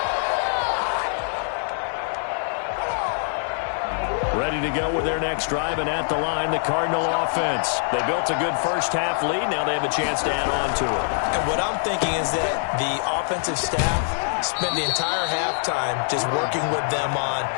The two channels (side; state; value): right; silent; digital silence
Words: Ready to go with their next drive, and at the line, the Cardinal offense. They built a good first half lead. Now they have a chance to add on to it. And what I'm thinking is that the offensive staff spent the entire halftime just working with them on,